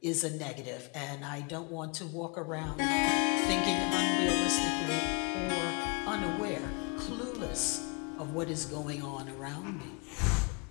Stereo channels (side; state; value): right; quieter; 34.0 dB